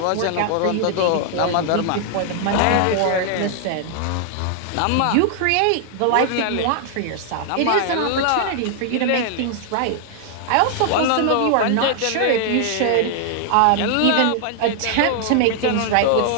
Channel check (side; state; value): both; different; correlation 0.00